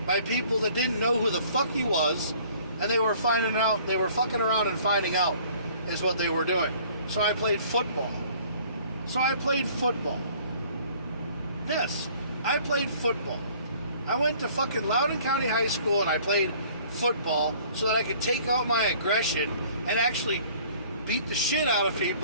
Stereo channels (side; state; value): both; inverted; correlation -0.54